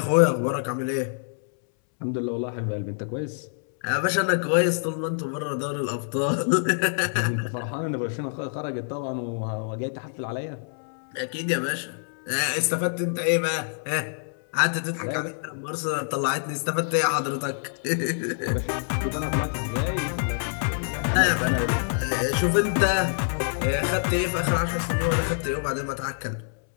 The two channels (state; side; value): silent; right; 61 dB below the other